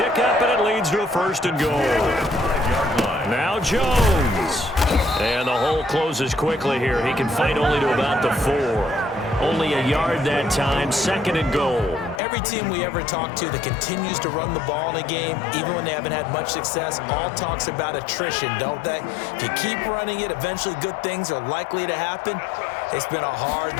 and it leads to a first and goal. Now Jones. And the hole closes quickly here. He can fight only to about the 4. Only a yard that time, second and goal. Every team we ever talk to that continues to run the ball in a game, even when they haven't had much success, all talks about attrition, don't they? If you keep running it, eventually good things are likely to happen. It's been a hard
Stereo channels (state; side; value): drops out; right; at 12.2 s